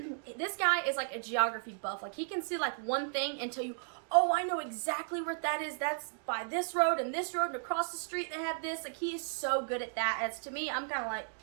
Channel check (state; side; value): silent; left; digital silence